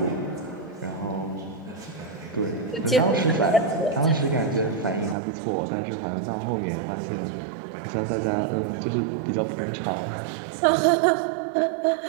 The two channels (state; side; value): drops out; left; at 5.2 s